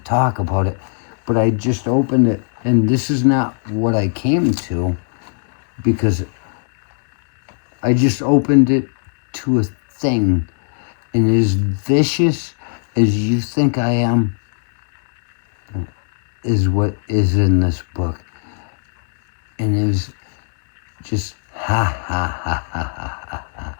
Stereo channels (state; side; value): silent; right; 65 dB below the other